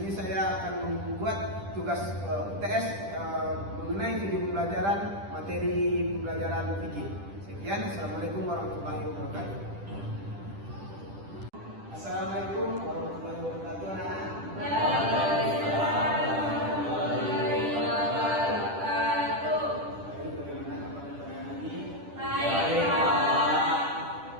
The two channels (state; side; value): late; left; 10 ms